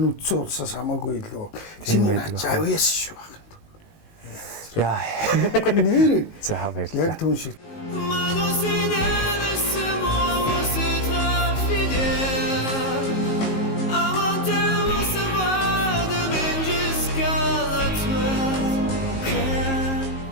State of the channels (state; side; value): late; right; 19 ms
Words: улсаас хамаагүй илүү. Чиний авьяас шүү байна. Яа. Нэр. За баярлалаа. Яг түн шиг.